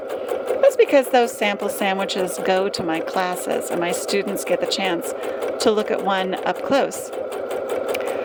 That's because those sample sandwiches go to my classes, and my students get the chance to look at one up close.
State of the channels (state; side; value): identical; both; correlation 1.00